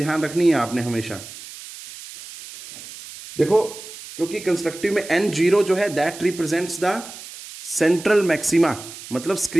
रखनी है आपने हमेशा। देखो क्योंकि कंस्ट्रक्टिव में n0 जो है that represents the central maxima, मतलब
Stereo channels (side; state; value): right; noise; hiss, 14 dB below the sound